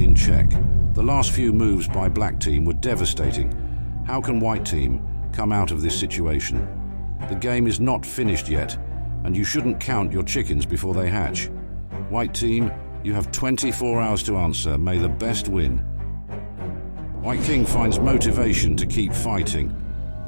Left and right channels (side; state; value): both; inverted; correlation -1.00